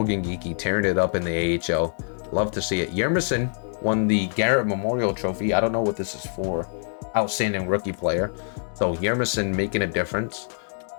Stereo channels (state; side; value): silent; right; 62 dB below the other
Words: Geekie tearing it up in the AHL. Love to see it. Yermison won the Garrett Memorial Trophy. I don't know what this is for. Outstanding rookie player. So Yermison making a difference.